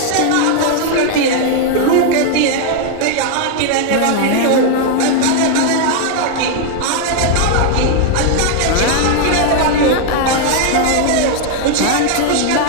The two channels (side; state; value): both; different; correlation 0.00